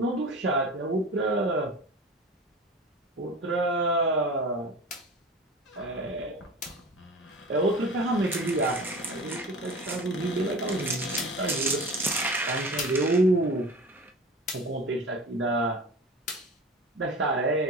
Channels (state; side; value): normal; both; correlation 0.36